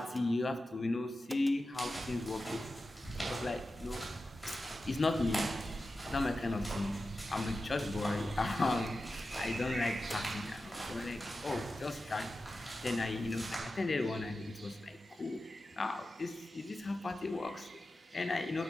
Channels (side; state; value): both; normal; correlation 0.92